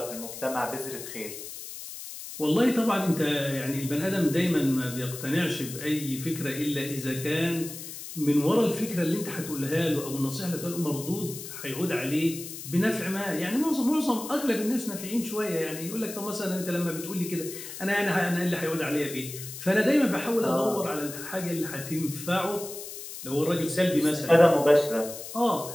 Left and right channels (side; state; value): left; noise; hiss, 10 dB below the sound